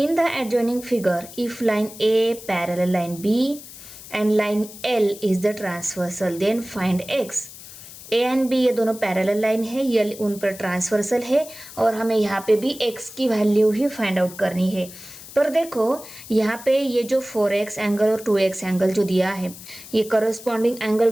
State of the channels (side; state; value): left; noise; hiss, 16 dB below the sound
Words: the adjoining figure, if line A parallel line B and line L is the transversal, then find x. A and B ये दोनों पैरेलल लाइन है, ये उन पर ट्रांसवर्सल है, और हमें यहाँ पे भी x की वैल्यू ही फाइंड आउट करनी है। पर देखो यहाँ पे ये जो 4x एंगल और 2x एंगल जो दिया है, ये करस्पॉन्डिंग एंगल